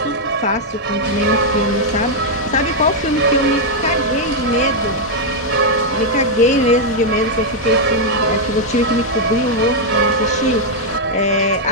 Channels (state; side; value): normal; both; correlation -0.02